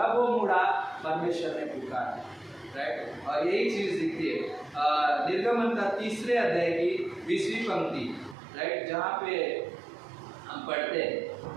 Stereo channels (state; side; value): drops out; left; at 8.3 s